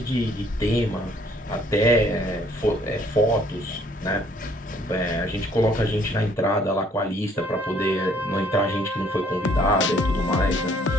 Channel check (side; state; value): both; normal; correlation 0.62